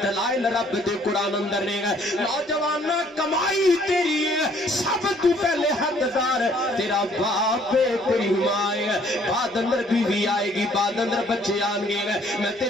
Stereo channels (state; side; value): normal; both; correlation 0.61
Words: دلائل رب دے قرآن اندر نہیں ہے۔ نوجوان کمائی تیری ہے سب تو پہلے حقدار تیرا باپ ہے تیری ماں ہے، بعد اندر بیوی آئے گی بعد اندر بچے آن گے، میں